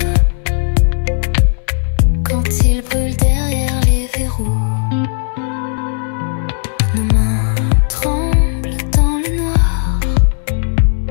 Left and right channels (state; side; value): silent; right; 64 dB below the other